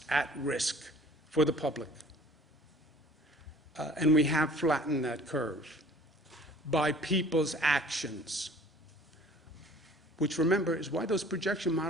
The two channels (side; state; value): both; normal; correlation 0.50